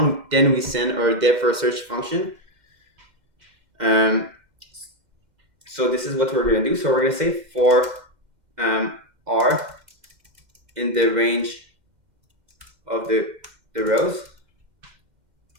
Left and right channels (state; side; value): late; left; 2.1 ms